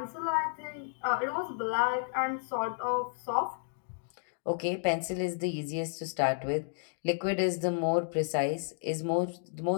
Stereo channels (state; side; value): silent; right; digital silence